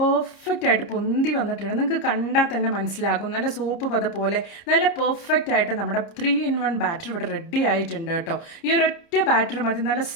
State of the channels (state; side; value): late; right; 30 ms